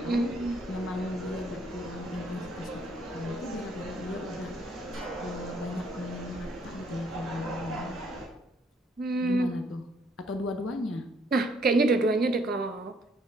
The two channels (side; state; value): both; normal; correlation 0.66